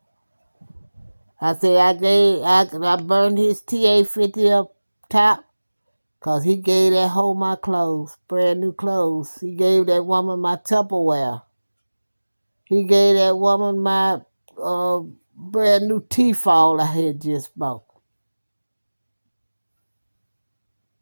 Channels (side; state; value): both; inverted; correlation -1.00